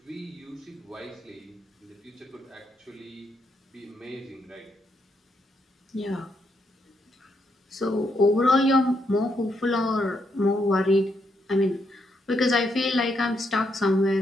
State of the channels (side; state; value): both; normal; correlation 0.77